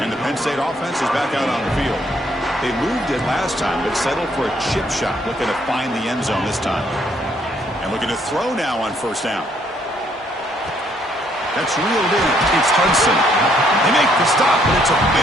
And the Penn State offense is back out on the field. They moved it last time, but settled for a chip shot, looking to find the end zone this time. And looking to throw now on first down. That's reeled in. It's Hudson. They make the stop, but it's a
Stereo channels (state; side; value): normal; both; correlation 0.68